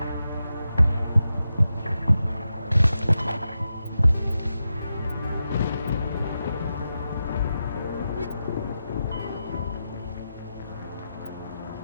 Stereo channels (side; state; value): both; inverted; correlation -0.89